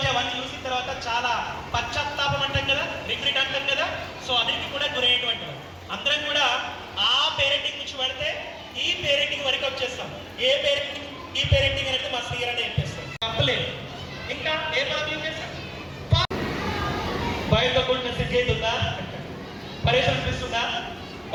అవన్నీ చూసిన తర్వాత చాలా పశ్చాత్తాపం అంటాం కదా, రిగ్రెట్ అంటాం కదా. సో అన్నిటికీ కూడా గురయ్యేటువంటి అందరం కూడా ఆ పేరెంటింగ్ నుంచి పడితే ఈ పేరెంటింగ్ వరకు వచ్చేస్తాం. ఏ పేరెంటింగ్ ఈ పేరెంటింగ్ అనేది మా శ్రీగారు అని చెప్పేస్తాం, తప్పలేదు. ఇంకా ఏ పదవి చేస్తాం, బయటతో కూడిన సిద్ధి అవుతుందా, పరేషన్ అనిపిస్తుందా?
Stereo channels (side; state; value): both; identical; correlation 1.00